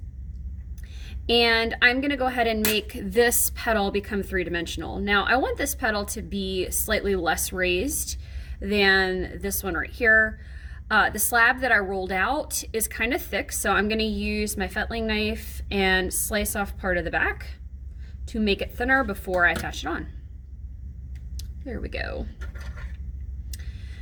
And I'm going to go ahead and make this petal become three-dimensional. Now I want this petal to be slightly less raised than this one right here. The slab that I rolled out is kind of thick, so I'm going to use my fettling knife and slice off part of the back to make it thinner before I attach it on. There we go.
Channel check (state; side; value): identical; both; correlation 1.00